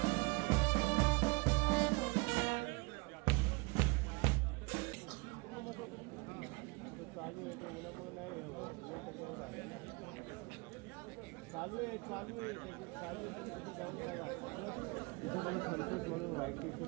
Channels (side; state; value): left; quieter; 27.8 dB